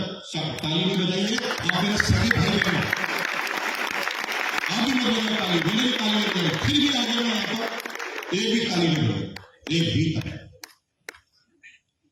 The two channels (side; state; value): both; identical; correlation 1.00